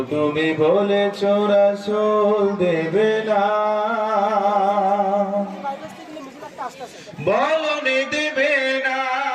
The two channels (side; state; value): both; identical; correlation 1.00